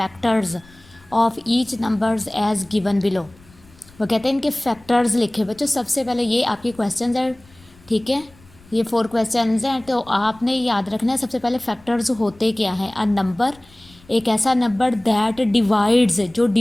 of each numbers as given below. वो कहते हैं इनके फैक्टर्स लिखे। बच्चों सबसे पहले ये आपके क्वेश्चन है, ठीक है। ये 4 क्वेश्चन हैं, तो आपने याद रखना है सबसे पहले फैक्टर्स होते क्या हैं। अ नंबर एक ऐसा नंबर दैट डिवाइड्स, जो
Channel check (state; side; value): noise; left; rumble, 27 dB below the sound